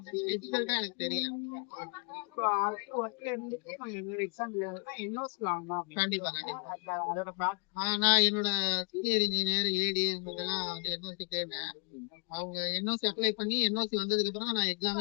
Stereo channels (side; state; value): right; quieter; 37.0 dB